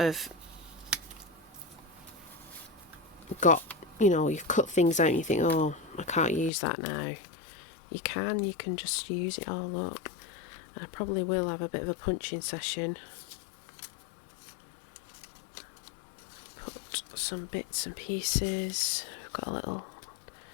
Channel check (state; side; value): drops out; right; at 6.5 s